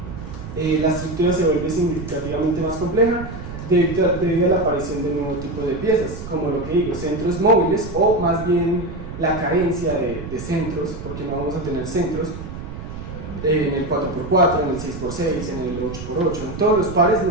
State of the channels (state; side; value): noise; right; rumble, 10 dB below the sound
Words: La estructura se vuelve significativamente más compleja debido a la aparición de nuevo tipo de piezas, como lo que digo, centros móviles, o más bien la carencia de centros, porque no vamos a tener centros en el 4x4, en el 6x6, en el 8x8, en todos los pares